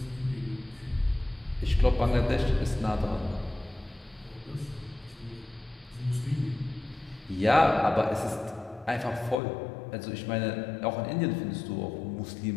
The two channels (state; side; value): drops out; right; at 9.4 s